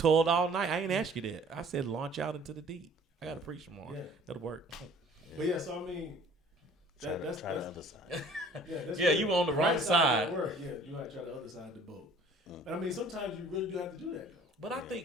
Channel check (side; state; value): both; normal; correlation 0.52